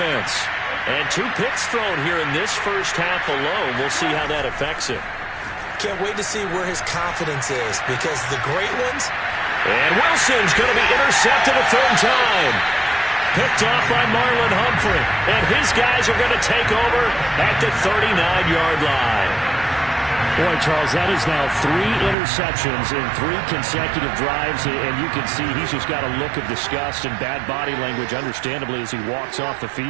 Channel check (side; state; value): left; drops out; at 22.2 s